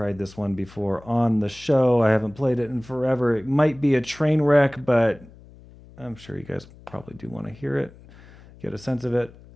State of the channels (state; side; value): noise; left; hum, 22 dB below the sound